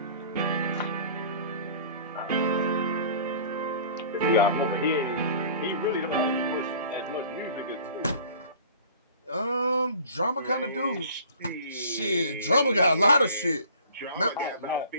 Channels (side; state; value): both; inverted; correlation -0.47